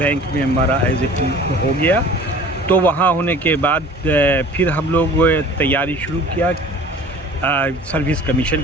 में हमारा एज ए हो गया। तो वहाँ होने के बाद फिर हम लोग तैयारी शुरू किया सर्विस कमीशन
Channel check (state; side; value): normal; both; correlation 0.45